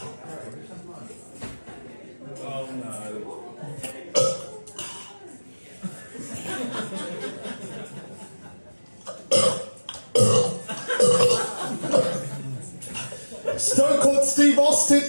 no. Stone Cold Steve Austin,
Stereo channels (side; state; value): both; inverted; correlation -1.00